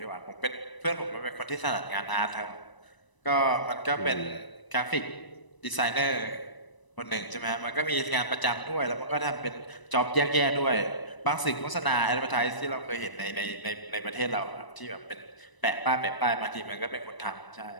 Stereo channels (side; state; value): right; late; 1.0 ms